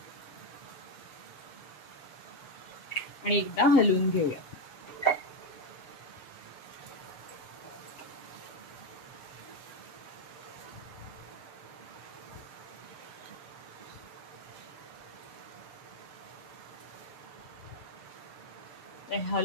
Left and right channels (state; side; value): late; right; 7.2 ms